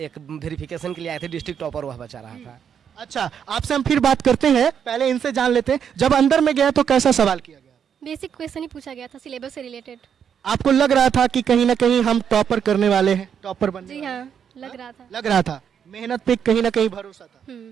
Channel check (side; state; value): left; quieter; 7.9 dB